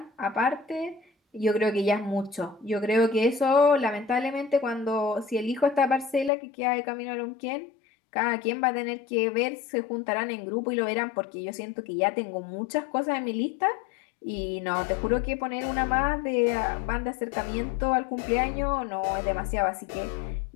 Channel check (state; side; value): drops out; right; at 6.3 s